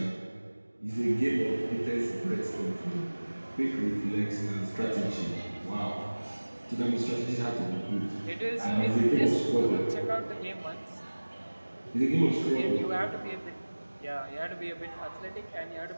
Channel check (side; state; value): both; inverted; correlation -1.00